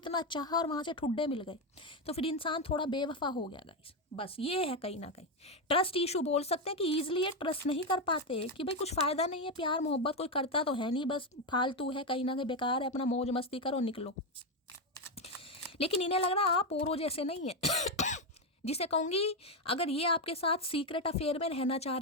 चाहा और वहाँ से ठुड्डे मिल गए, तो फिर इंसान थोड़ा बेवफा हो गया गाइस। बस ये है कहीं ना कहीं ट्रस्ट इशू बोल सकते हैं कि ईजिली ये ट्रस्ट नहीं कर पाते कि भाई कुछ फ़ायदा नहीं है, प्यार मोहब्बत कोई करता तो है नहीं, बस फालतू है, कहीं ना कहीं बेकार है, अपना मौज मस्ती करो, निकलो। लेकिन इन्हें लग रहा आप औरों जैसे नहीं है। जिसे कहूँगी अगर ये आपके साथ सीक्रेट अफेयर में रहना चाह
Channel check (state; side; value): normal; both; correlation 0.09